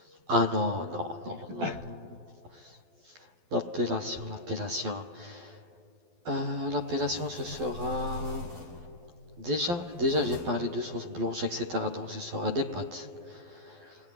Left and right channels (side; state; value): left; late; 12 ms